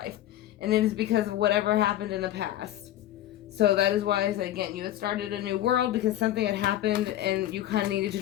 And it is because of whatever happened in the past. So that is why I said, again, you had started a new world because something had happened and you kind of needed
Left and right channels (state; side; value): quieter; right; 13.3 dB